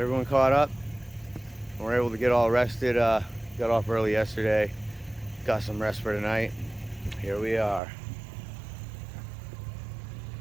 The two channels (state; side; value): drops out; left; at 7.8 s